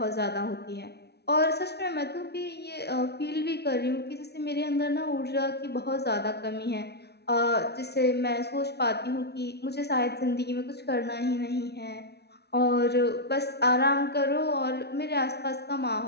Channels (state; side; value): late; right; 0.48 ms